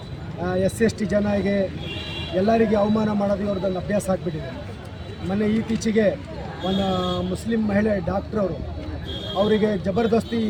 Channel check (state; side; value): identical; both; correlation 1.00